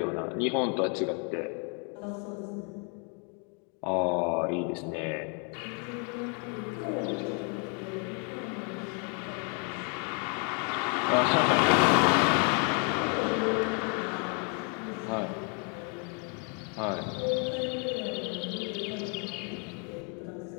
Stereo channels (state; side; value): quieter; right; 37.9 dB